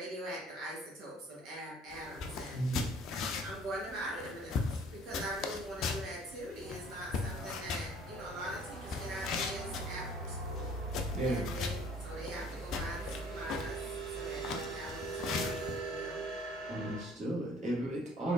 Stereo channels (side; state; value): both; normal; correlation 0.54